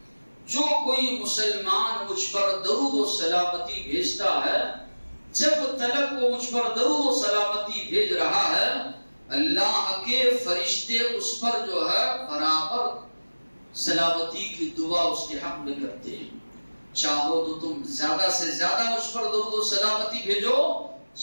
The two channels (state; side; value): inverted; both; correlation -1.00